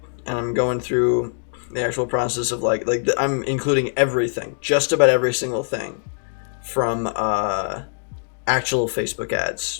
and I'm going through the actual process of I'm including everything, just about every single thing, from actual Facebook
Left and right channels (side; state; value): right; silent; digital silence